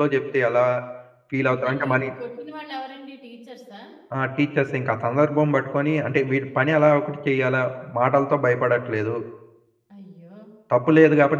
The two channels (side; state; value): both; identical; correlation 1.00